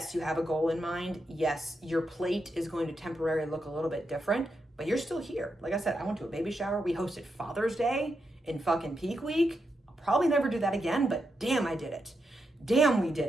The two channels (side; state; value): both; normal; correlation 0.84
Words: you have a goal in mind. Yes, your plate is going to temporarily look a little bit different, but you're still here. Like I said, I went to a baby shower. We hosted Father's Day in fucking peak week. I'll probably never do that again, but damn, I did it. Damn, we did